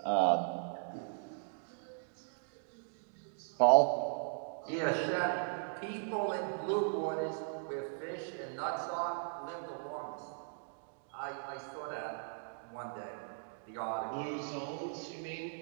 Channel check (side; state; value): left; silent; digital silence